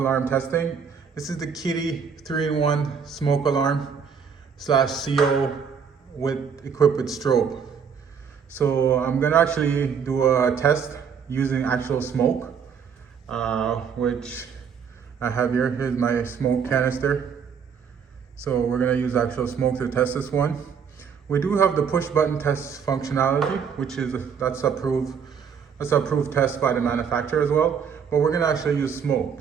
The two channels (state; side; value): quieter; left; 6.8 dB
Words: testing. This is the Kitty 3-in-1 smoke alarm slash CO equipped with strobe. So I'm gonna actually do a test using actual smoke, which I have here. Here's my smoke canister. So we're gonna use actual smoke to test this one. We do have the push button test functionality, which is that's approved test by the manufacturer as well. But we're gonna actually use